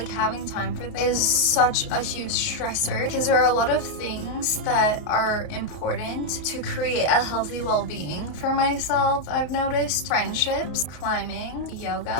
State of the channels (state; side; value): late; right; 33 ms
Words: having time for things is such a huge stressor because there are a lot of things that are important to create a healthy well-being for myself. I've noticed friendships, climbing,